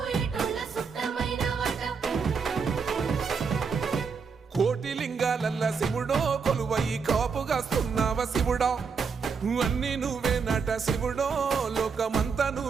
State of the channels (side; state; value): left; quieter; 5.6 dB